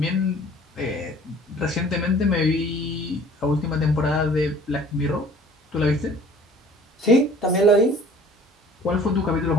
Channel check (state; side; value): normal; both; correlation 0.50